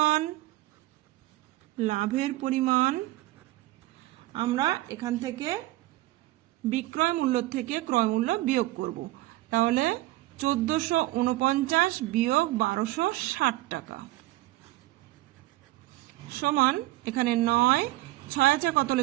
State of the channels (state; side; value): quieter; left; 18.1 dB